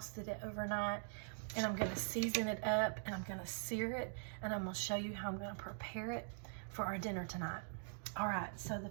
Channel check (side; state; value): left; silent; digital silence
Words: it overnight, and I'm gonna season it up, and I'm gonna sear it, and I'm gonna show you how I'm gonna prepare it for our dinner tonight. All right, so the